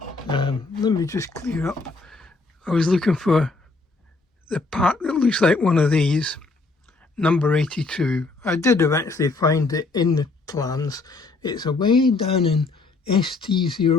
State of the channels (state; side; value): quieter; right; 3.7 dB